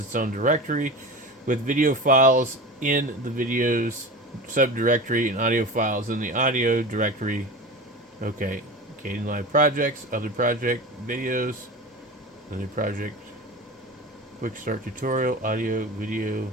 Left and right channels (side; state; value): both; normal; correlation 0.30